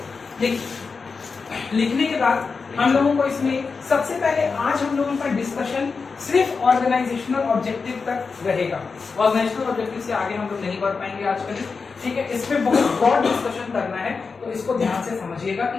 लिखने के बाद हम लोगों को इसमें सबसे पहले आज हम लोगों का डिस्कशन सिर्फ ऑर्गेनाइजेशनल ऑब्जेक्टिव तक रहेगा। ऑर्गेनाइजेशनल ऑब्जेक्टिव से आगे हम लोग नहीं बढ़ पाएंगे आज कल। ठीक है, इस पे बहुत ब्रॉड डिस्कशन करना है, तो इसको ध्यान से समझिएगा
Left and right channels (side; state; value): right; quieter; 4.8 dB